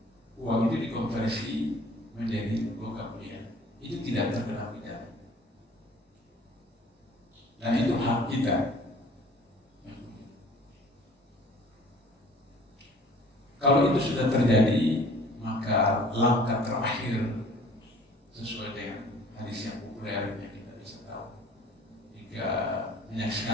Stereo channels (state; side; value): normal; both; correlation 0.50